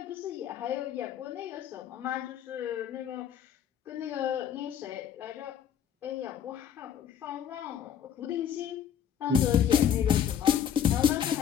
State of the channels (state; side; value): quieter; right; 8.8 dB